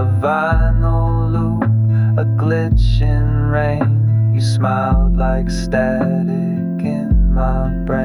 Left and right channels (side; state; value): both; identical; correlation 1.00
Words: vinyl loop, a glitch in rain. You smiled like static in my